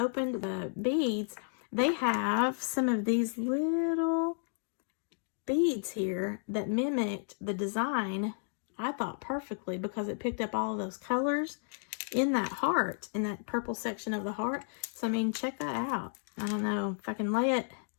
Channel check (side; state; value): right; silent; digital silence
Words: opened the beads, they have some of these little beads here that mimicked the design, I thought, perfectly, because it picked up all of those colors in that heart, in that purple section of the heart. So I mean, check that out. I don't know if I can lay it.